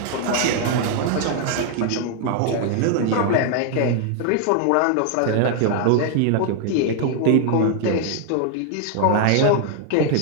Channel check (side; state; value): both; different; correlation 0.00